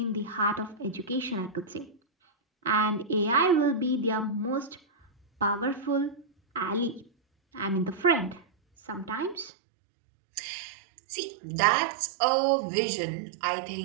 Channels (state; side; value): drops out; left; at 9.5 s